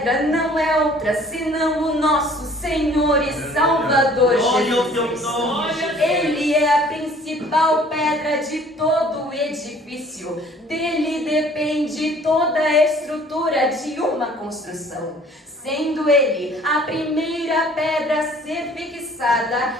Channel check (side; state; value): both; normal; correlation 0.54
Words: não é outra senão o nosso Senhor e Salvador Jesus Cristo. Ele é a principal principal pedra de todo o edifício. Dele depende toda a estrutura de uma construção. Sendo ele a primeira pedra a ser fixada,